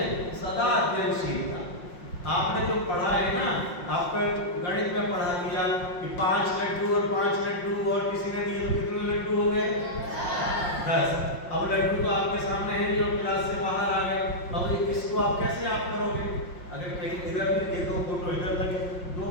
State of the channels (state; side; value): late; right; 5.6 ms